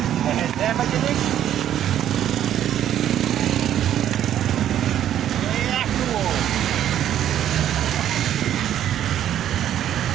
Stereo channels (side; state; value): left; quieter; 11.0 dB